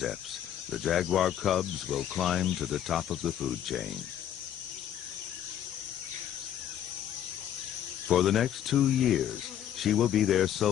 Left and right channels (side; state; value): right; quieter; 10.5 dB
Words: the jaguar cubs will climb to the top of the food chain. For the next 2 years, she will be their